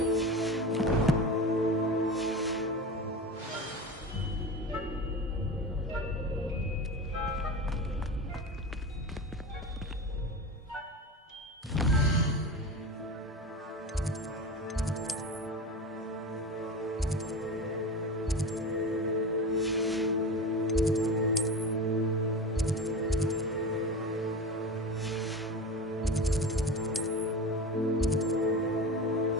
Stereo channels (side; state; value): both; normal; correlation 0.27